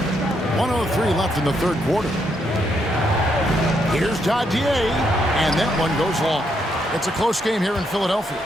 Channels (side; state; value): both; normal; correlation 0.77